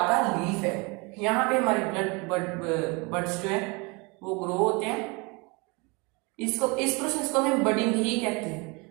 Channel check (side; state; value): left; quieter; 28.6 dB